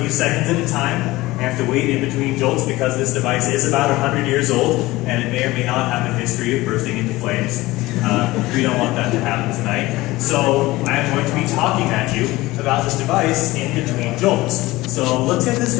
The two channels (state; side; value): quieter; right; 19.2 dB